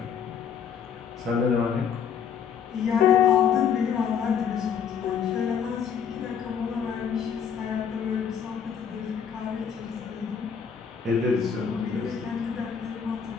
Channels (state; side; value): quieter; right; 7.5 dB